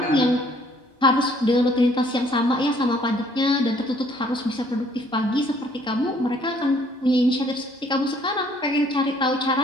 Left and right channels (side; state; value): both; normal; correlation 0.62